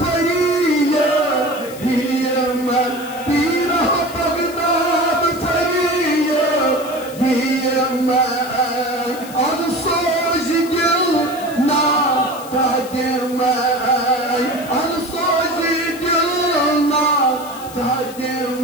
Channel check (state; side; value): noise; left; hiss, 17 dB below the sound